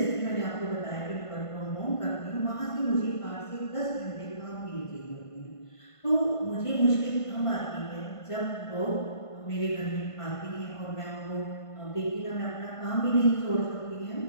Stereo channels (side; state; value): right; late; 1.5 ms